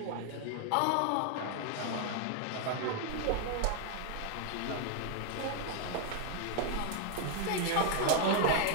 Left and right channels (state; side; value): different; both; correlation 0.00